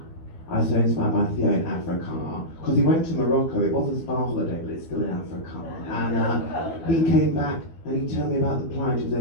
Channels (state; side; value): late; right; 12 ms